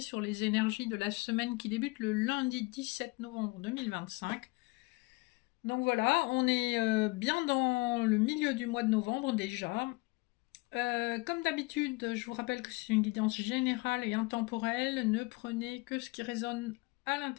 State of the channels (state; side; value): quieter; right; 25.4 dB